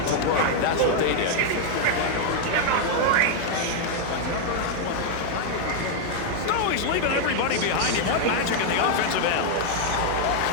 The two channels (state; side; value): different; both; correlation 0.00